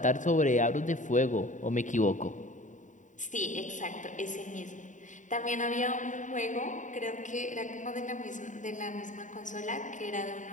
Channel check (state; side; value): late; right; 0.36 ms